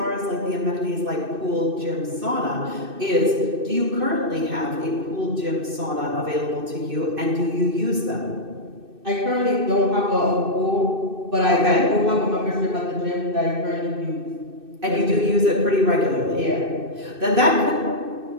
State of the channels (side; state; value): left; late; 2.6 ms